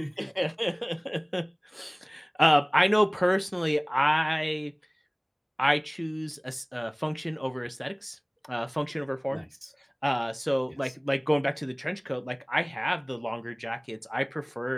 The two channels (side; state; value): both; identical; correlation 1.00